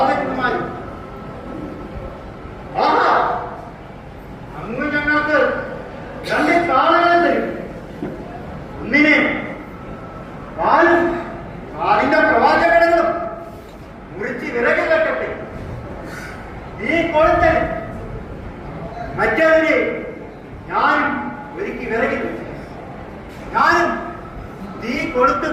ആഹാ, അങ്ങ് ഞങ്ങൾക്ക് 2 കാളകളെ തരും. ഒന്നിനെ കാലും കാലിന്റെ പ്രവാചകങ്ങളും മുറിച്ച് വിറക് കെട്ടട്ടെ. നീ കൊളുത്തൻ മറ്റവരെ ഞാനും ഒരുക്കി വിറകിൽ വെച്ചു. ഞാനും തീ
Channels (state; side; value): identical; both; correlation 1.00